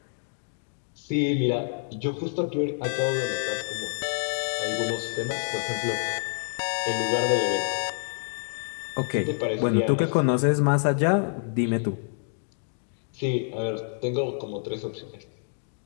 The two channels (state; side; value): silent; right; digital silence